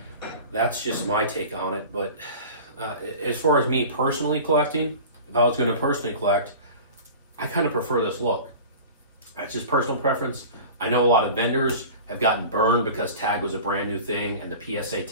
that's just my take on it. But as far as me personally collecting, if I was going to personally collect, I kind of prefer this look. That's just personal preference. I know a lot of vendors have gotten burned because Tag was a brand new thing and the PSA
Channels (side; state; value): both; inverted; correlation -0.37